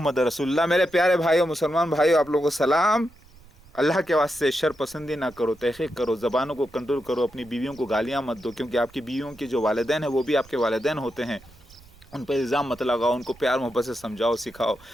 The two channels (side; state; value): right; noise; rumble, 25 dB below the sound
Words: رسول اللہ۔ میرے پیارے بھائیو، مسلمان بھائیو، آپ لوگوں کو سلام۔ اللہ کے واسطے شر پسندی نہ کرو، تحقیق کرو، زبانوں کو کنٹرول کرو، اپنی بیویوں کو گالیاں مت دو، کیونکہ آپ کی بیویوں کے جو والدین ہیں وہ بھی آپ کے والدین ہوتے ہیں، ان پہ الزام مت لگاؤ، ان کو پیار محبت سے سمجھاؤ، سکھاؤ،